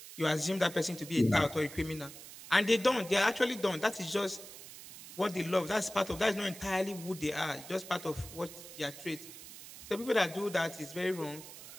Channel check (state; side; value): noise; right; hiss, 15 dB below the sound